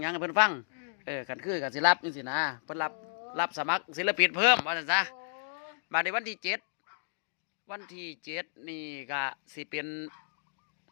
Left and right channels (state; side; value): silent; right; digital silence